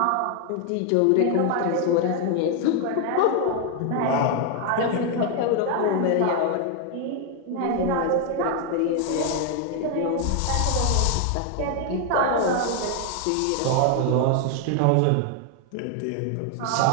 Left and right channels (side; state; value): both; different; correlation 0.00